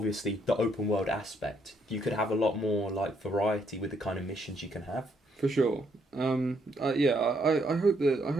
the open world aspect. You could have a lot more, like, variety with the kind of missions you can have. For sure. I hope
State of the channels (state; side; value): normal; both; correlation 0.72